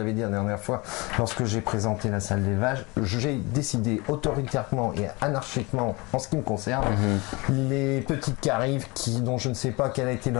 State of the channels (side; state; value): right; quieter; 25.5 dB